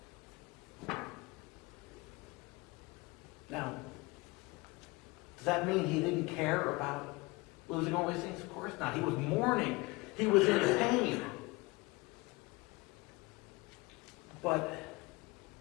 Now, does that mean he didn't care about losing all these things? Of course not. He was mourning. He was in pain. But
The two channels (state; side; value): quieter; right; 24.2 dB